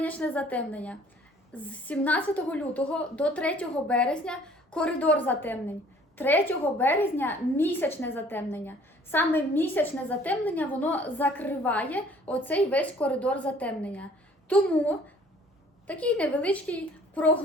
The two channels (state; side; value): normal; both; correlation 0.55